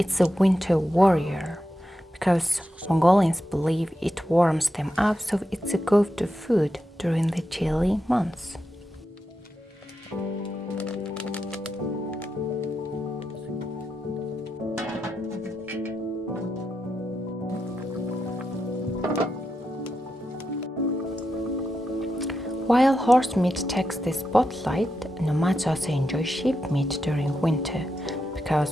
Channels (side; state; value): both; normal; correlation 0.87